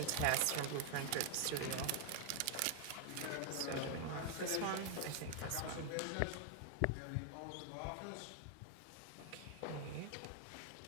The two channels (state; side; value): different; both; correlation 0.00